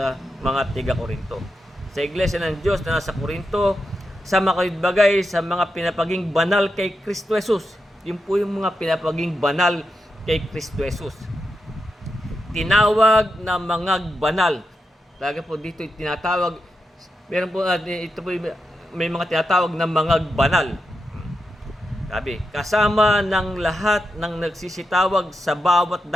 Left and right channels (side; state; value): both; normal; correlation 0.87